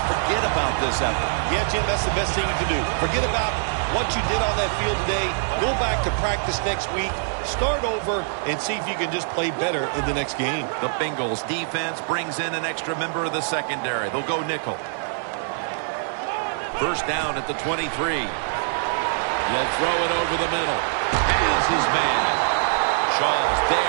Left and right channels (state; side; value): silent; left; digital silence